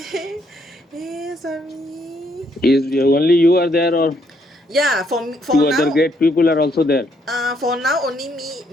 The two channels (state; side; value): normal; both; correlation 0.71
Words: Swami. Is only you are there, or Yeah, for two other now, great people are also there? for now only